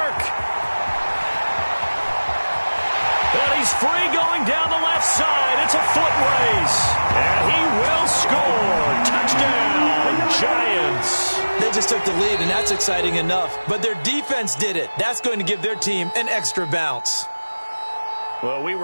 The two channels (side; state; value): both; inverted; correlation -1.00